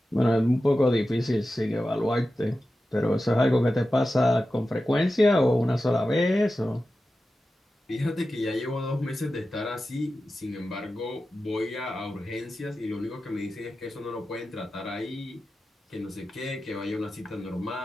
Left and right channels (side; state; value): both; normal; correlation 0.93